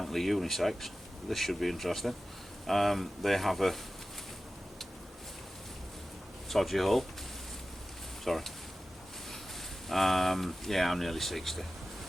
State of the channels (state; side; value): normal; both; correlation 0.95